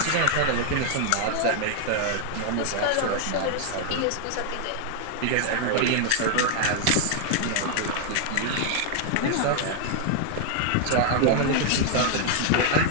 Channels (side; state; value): both; different; correlation 0.00